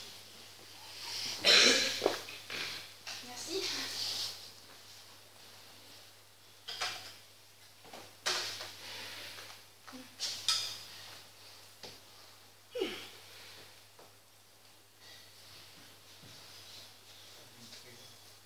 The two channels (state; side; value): identical; both; correlation 1.00